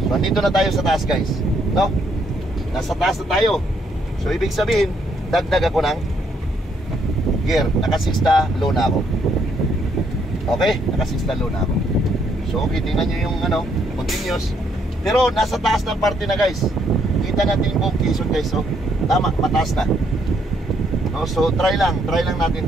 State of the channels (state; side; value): normal; both; correlation 0.72